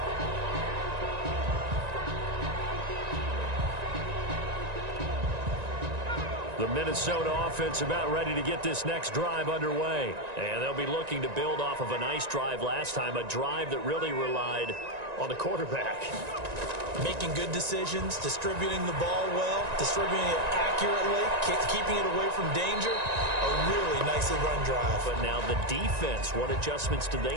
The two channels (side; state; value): left; late; 1.9 ms